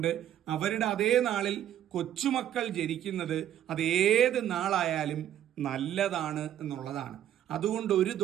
അവരുടെ അതേ നാളിൽ കൊച്ചുമക്കൾ ജനിക്കുന്നത് അതേത് നാളായാലും നല്ലതാണ് എന്നുള്ളതാണ്. അതുകൊണ്ട് ഒരു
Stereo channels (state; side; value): quieter; left; 11.3 dB